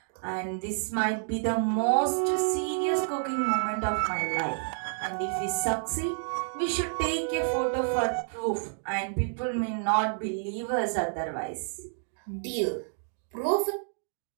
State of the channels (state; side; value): silent; left; digital silence